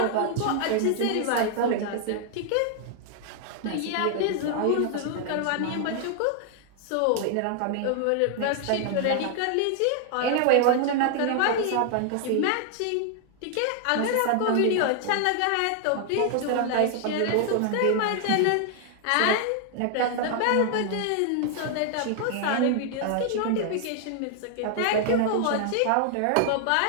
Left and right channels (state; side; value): different; both; correlation 0.00